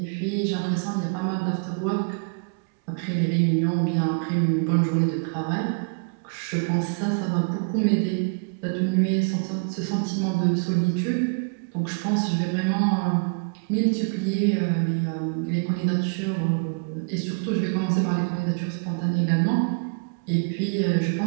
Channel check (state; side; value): quieter; left; 36.4 dB